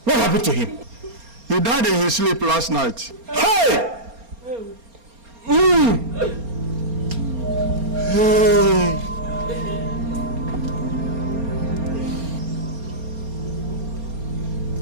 What happened to him? He died in his sleep last night. Hey! Hey!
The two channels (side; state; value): left; late; 4.3 ms